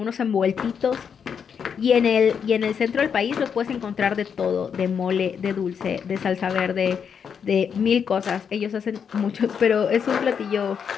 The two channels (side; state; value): right; quieter; 7.1 dB